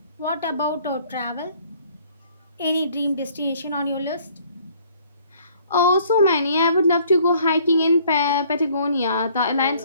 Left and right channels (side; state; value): both; inverted; correlation -0.59